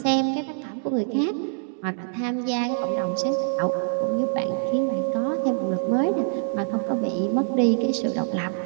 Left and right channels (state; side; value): silent; left; digital silence